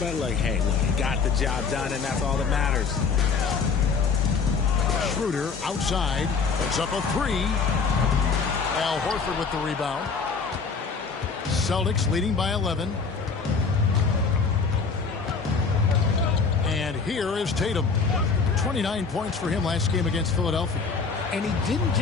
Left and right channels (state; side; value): quieter; right; 5.1 dB